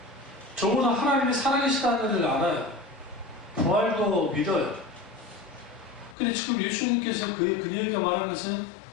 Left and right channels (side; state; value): right; drops out; at 6.2 s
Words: 적어도 하나님이 살아계시다는 것을 알아요. 부활도 믿어요. 근데 지금 예수님께서 그녀에게 말한 것은